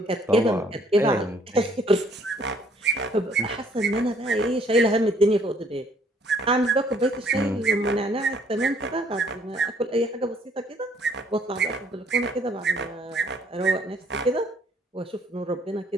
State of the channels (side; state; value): both; normal; correlation 0.63